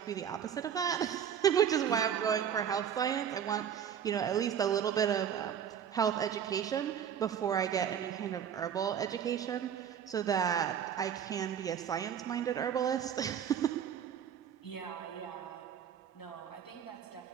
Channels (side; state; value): left; quieter; 8.6 dB